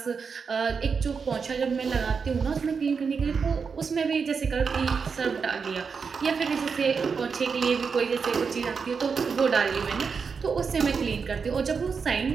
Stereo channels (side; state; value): left; quieter; 5.6 dB